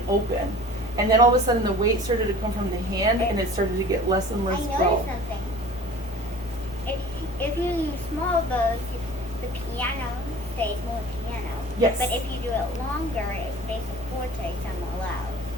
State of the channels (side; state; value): both; normal; correlation 0.43